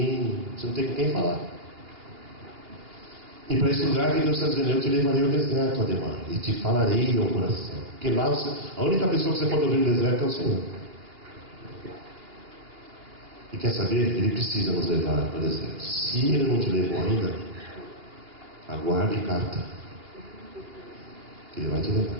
você não tem com quem falar. E para esse lugar que Deus está dizendo, eu te levarei ao deserto, Ademar, e te falarei ao coração. Porque lá a única pessoa que você pode ouvir no deserto é o Senhor. E quer saber? Ele precisa nos levar para o deserto. Se Ele não te levou ainda, aguarde carta. Que Ele vai te levar.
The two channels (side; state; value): left; late; 2.9 ms